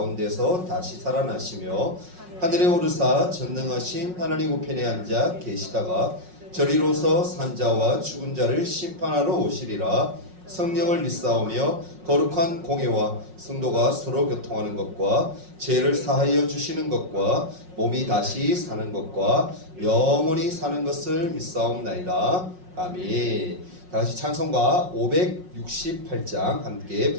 다시 살아나시며 하늘에 오르사 전능하신 하나님 우편에 앉아 계시다가 저리로서 산자와 죽은 자를 심판하러 오시리라. 성령을 믿사오며 거룩한 공회와 성도가 서로 교통하는 것과 죄를 사하여 주시는 것과 몸이 다시 사는 것과 영원히 사는 것을 믿사옵나이다. 아멘. 다같이 찬송가 568장 함께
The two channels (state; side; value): late; left; 5.5 ms